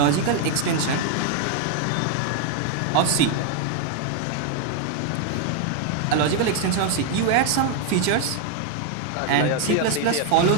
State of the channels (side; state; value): both; different; correlation 0.00